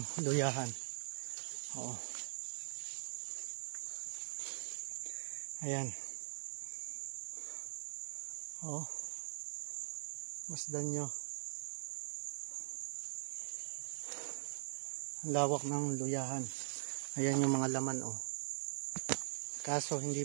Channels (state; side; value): silent; left; digital silence